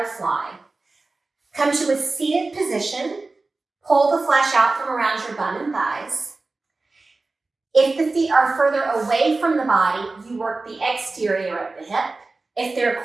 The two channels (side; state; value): left; quieter; 3.5 dB